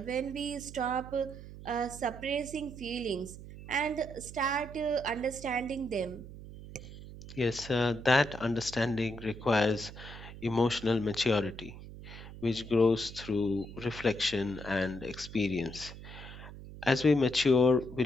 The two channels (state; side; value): noise; right; hum, 14 dB below the sound